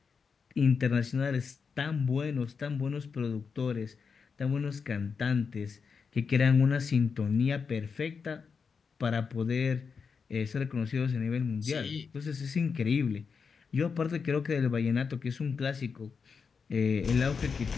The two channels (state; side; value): quieter; right; 5.6 dB